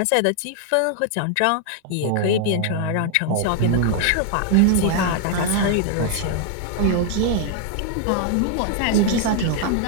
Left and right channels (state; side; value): different; both; correlation 0.00